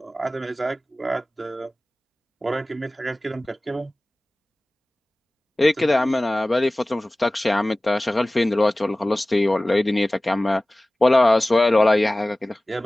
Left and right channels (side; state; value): both; normal; correlation 0.98